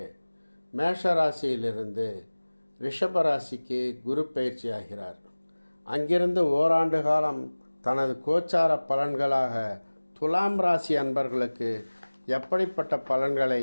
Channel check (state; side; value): inverted; both; correlation -1.00